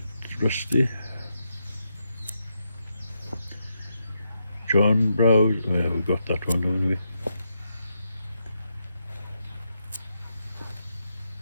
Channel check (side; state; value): both; inverted; correlation -0.83